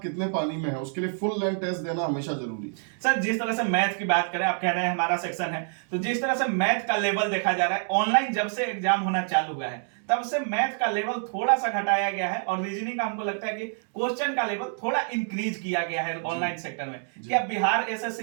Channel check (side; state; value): left; silent; 60 dB below the other